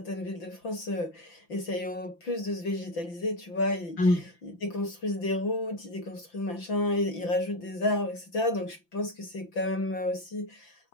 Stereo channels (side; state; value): right; late; 5.8 ms